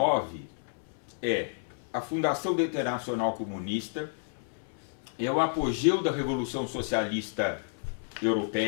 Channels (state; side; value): silent; right; 57 dB below the other